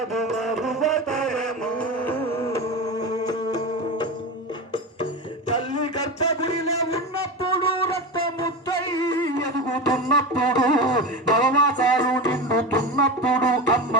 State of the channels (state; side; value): normal; both; correlation 0.23